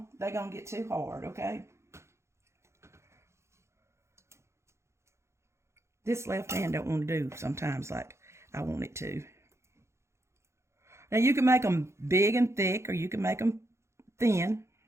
they're going to get too hard, okay? This left hand don't want to do sometimes like I want it to. Now you can make them big and thick, or you can make them thin.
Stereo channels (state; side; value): late; left; 0.13 ms